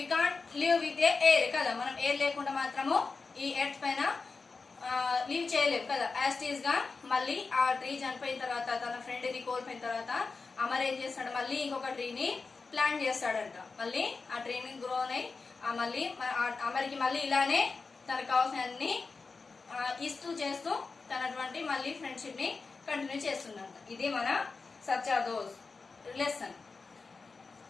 can't live with a air కదా. మనం ఎయిర్ లేకుండా మాత్రము ఈ ఎర్త్ పైన లీవ్ చేయలేము కదా. యాస్టీస్ గా మళ్ళీ ఆ ట్రీ చనిపోయిన తర్వాత, తన ఫ్రెండ్ ని కోల్పోయిన తర్వాత అమర్ ఏం చేస్తాడు, మళ్ళీ ఇంకొక ట్రీని ప్లాంట్ చేస్తాడంట. మళ్ళీ ఆ ట్రీని గ్రో అయి మళ్ళీ అమర్కి మళ్ళీ ఇలానే తనకు కావాల్సిన అన్ని ఇస్తూ చేస్తూ తనటువంటి మళ్ళీ ఫ్రెండ్షిప్ ని కంటిన్యూ చేస్తుందంట. ఇది మన సచ్చా దోస్త్ లెసన్.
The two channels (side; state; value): right; quieter; 4.3 dB